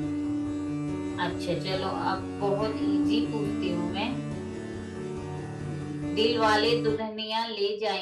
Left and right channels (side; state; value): both; identical; correlation 1.00